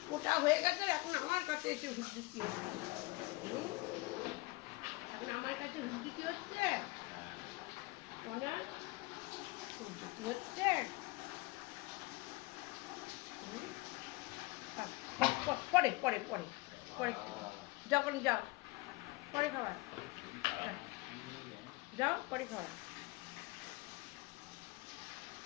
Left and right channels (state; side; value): quieter; right; 23.0 dB